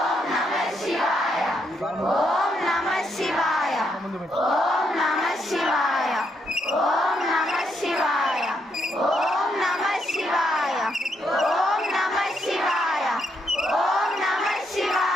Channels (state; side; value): normal; both; correlation 0.77